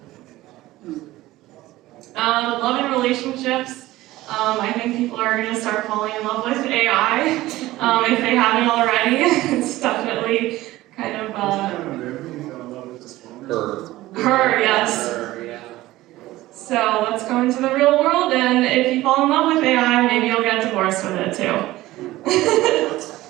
Love and relationships. I think people are going to start falling in love with AI if they haven't already. It's definitely kind of her, yes. Her, yeah. So let's go into the real world, and if you fall in love with AI, maybe you'll get divorced with it too.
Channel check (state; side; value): quieter; left; 17.0 dB